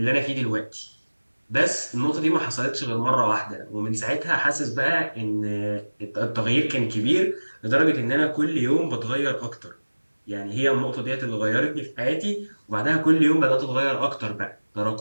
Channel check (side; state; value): both; inverted; correlation -1.00